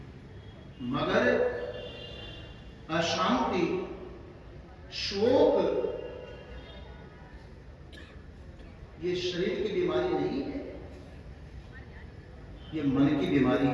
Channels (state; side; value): identical; both; correlation 1.00